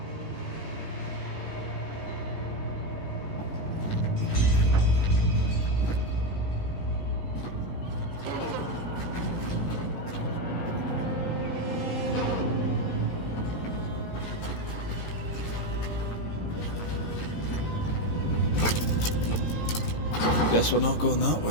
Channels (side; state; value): right; late; 18 ms